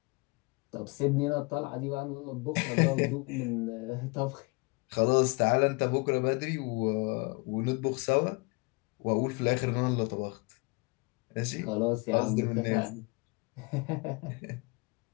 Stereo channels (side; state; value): right; quieter; 28.7 dB